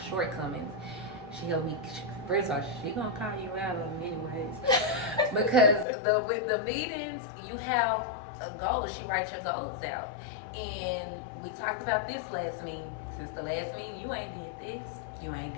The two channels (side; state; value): right; drops out; at 5.9 s